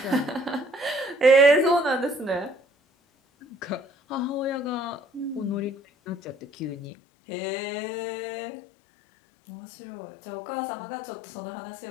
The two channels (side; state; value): right; drops out; at 6.9 s